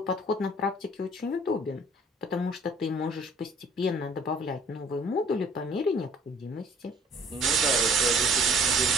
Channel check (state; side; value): normal; both; correlation 0.54